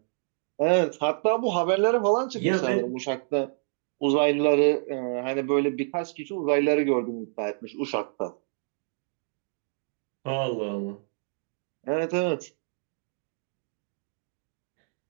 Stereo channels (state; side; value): silent; left; 59 dB below the other